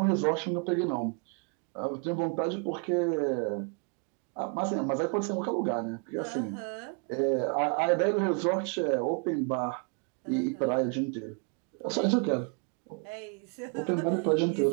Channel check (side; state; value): left; quieter; 35.5 dB